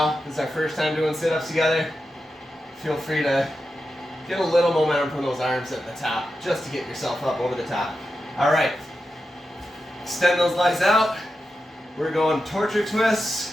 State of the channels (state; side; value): normal; both; correlation 0.90